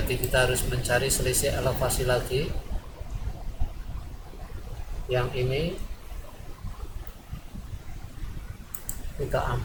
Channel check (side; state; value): both; identical; correlation 1.00